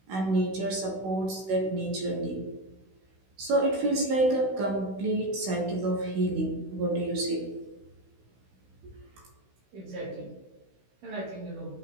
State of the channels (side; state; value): left; late; 16 ms